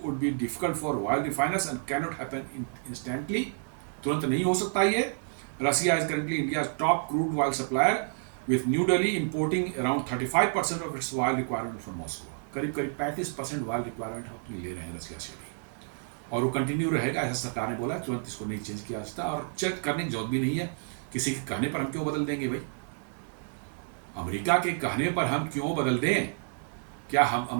be difficult for oil refiners and cannot happen instantly. तुरंत नहीं हो सकता ये। Russia is currently India's top crude oil supplier, with New Delhi importing around 35% of its oil requirement from Moscow. करीब 35% oil requirement हम ले रहे हैं रसिया से भी, और वो कंटिन्यू रहेगा, ऐसा सरकार ने बोला। तुरंत इसको नहीं चेंज किया जा सकता और चेक करने की जरूरत भी नहीं है। किसी के कहने पर हम क्यों बदल देंगे भाई? अमेरिका के कहने पर हम क्यों बदल दें? क्या हम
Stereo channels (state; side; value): silent; left; digital silence